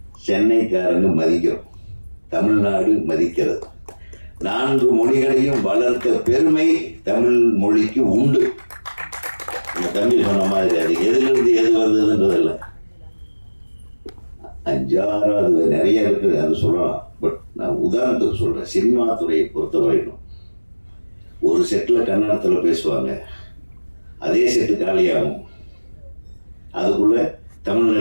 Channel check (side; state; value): both; inverted; correlation -1.00